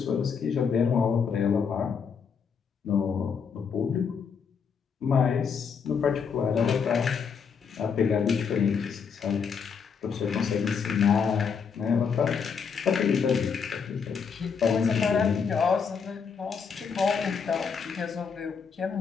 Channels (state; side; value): quieter; right; 6.3 dB